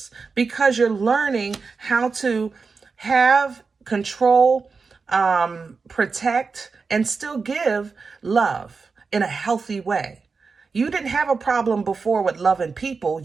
because you're learning how to have control, protect, and still give love in a healthy way. You didn't have a problem before with loving people.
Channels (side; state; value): left; quieter; 4.7 dB